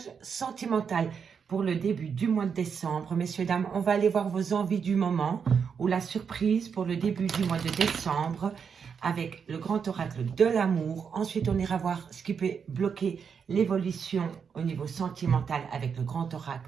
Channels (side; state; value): left; quieter; 6.5 dB